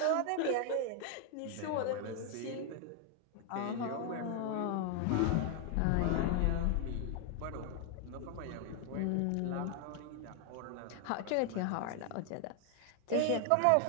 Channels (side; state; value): both; different; correlation 0.00